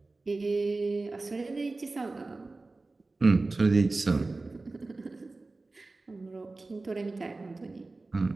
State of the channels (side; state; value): left; quieter; 3.4 dB